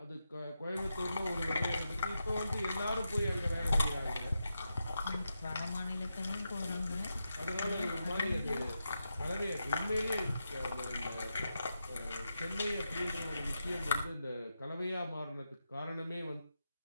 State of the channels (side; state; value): both; inverted; correlation -0.88